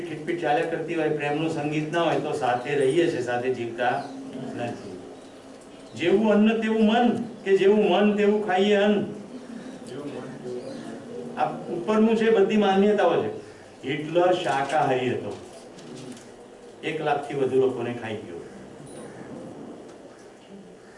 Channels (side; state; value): both; identical; correlation 1.00